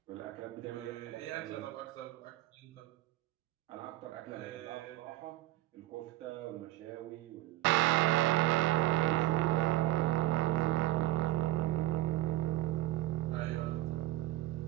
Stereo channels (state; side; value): quieter; left; 16.5 dB